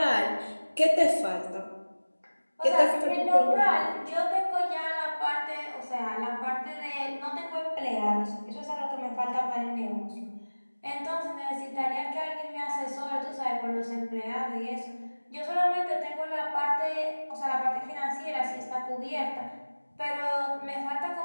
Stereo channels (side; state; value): both; inverted; correlation -1.00